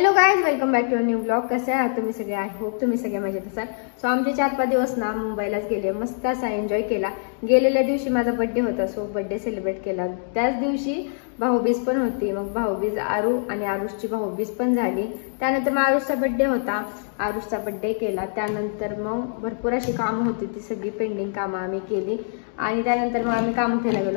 guys, welcome back to new blog. कसे आहात तुम्ही सगळे? आय होप तुम्ही सगळे मजेत असाल. सो आमचे 4-5 दिवस ना मुंबईलाच गेले, मस्त असा एन्जॉय केला. गेलेल्या दिवशी माझा बर्थडे होता, सो बर्थडे सेलिब्रेट केला. त्याच दिवशी भाऊबीज पण होती. मग भाऊबीज आरू आणि आरुषची भाऊबीज पण झाली. त्यानंतर मग आरुषचा बर्थडे होता, आरुषचा बर्थडे केला. त्यानंतर मग भरपूर अशी कामं होती, ती सगळी पेंडिंग कामं आम्ही केली. आणि त्यानंतर मग आम्ही कामोठ्याला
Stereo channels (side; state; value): right; silent; digital silence